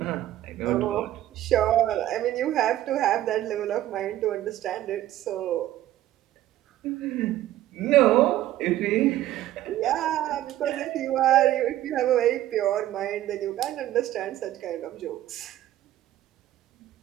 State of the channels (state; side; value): quieter; left; 13.8 dB